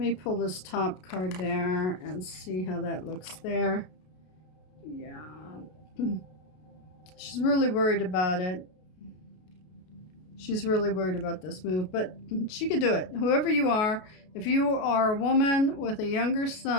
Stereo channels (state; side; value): late; right; 33 ms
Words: me pull this top card there and see how that looks there. Yeah. She's really worried about it. She's really worried about this move, but she could do it. Whoever you are, if you are a woman with a younger